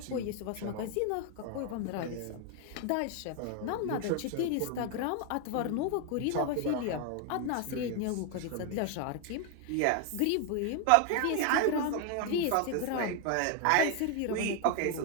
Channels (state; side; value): different; both; correlation 0.01